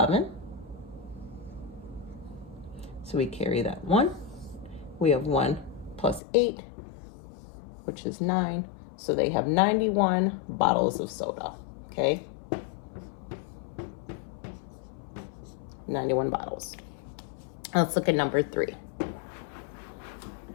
So we carry that 1. We have 1 plus 8, which is 9. So they have 91 bottles of soda, okay? 91 bottles. Let's look at number 3.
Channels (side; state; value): right; drops out; at 6.2 s